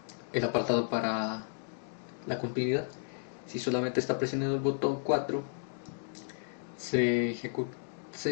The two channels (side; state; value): right; silent; digital silence